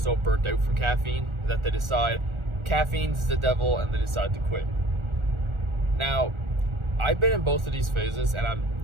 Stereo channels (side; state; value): left; late; 1.4 ms